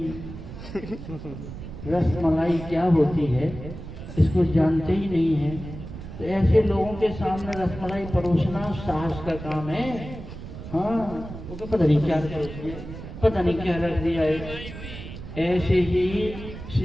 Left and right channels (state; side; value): noise; right; rumble, 11 dB below the sound